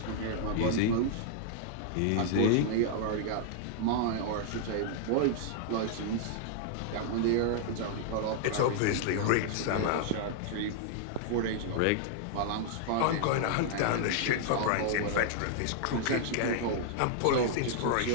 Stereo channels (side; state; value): both; different; correlation -0.01